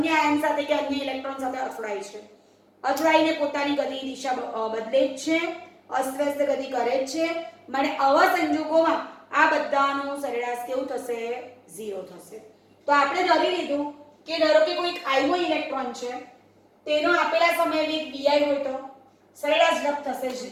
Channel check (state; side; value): identical; both; correlation 1.00